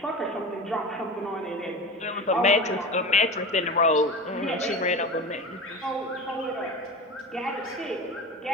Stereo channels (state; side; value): normal; both; correlation 0.30